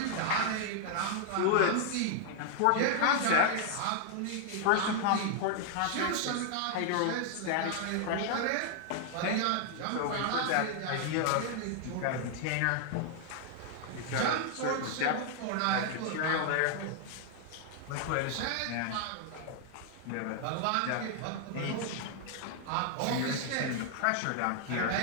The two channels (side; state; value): both; different; correlation 0.00